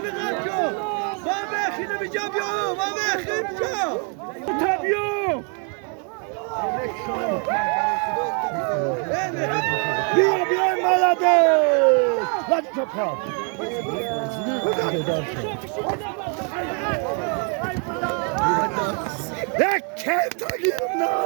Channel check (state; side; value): quieter; left; 39.5 dB